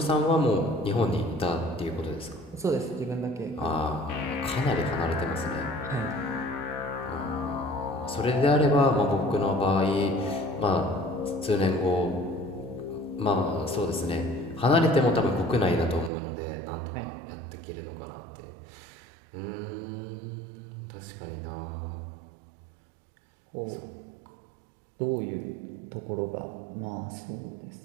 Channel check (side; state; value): left; drops out; at 16.1 s